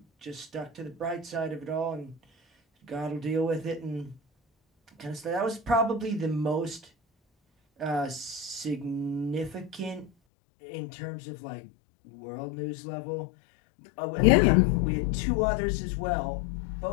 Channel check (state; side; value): drops out; right; at 10.1 s